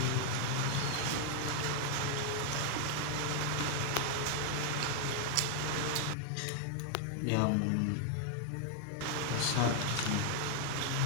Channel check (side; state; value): both; different; correlation 0.00